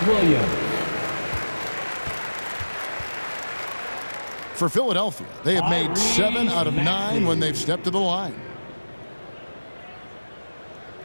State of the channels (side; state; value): both; inverted; correlation -1.00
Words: Williams. For Philadelphia, they have made 7 out of 9 when they've stepped to the line.